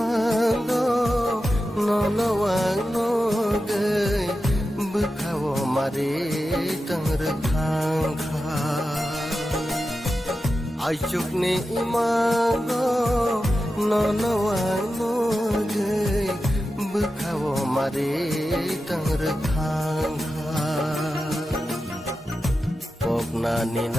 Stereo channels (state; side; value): normal; both; correlation 0.91